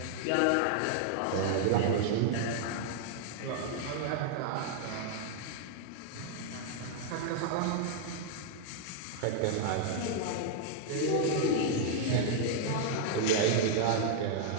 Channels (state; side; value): different; both; correlation -0.01